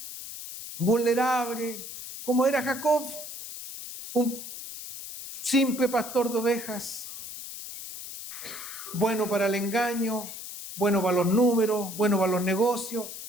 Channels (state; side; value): noise; left; hiss, 10 dB below the sound